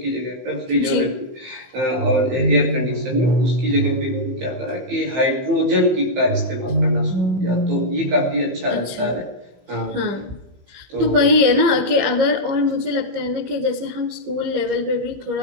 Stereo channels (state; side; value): late; left; 15 ms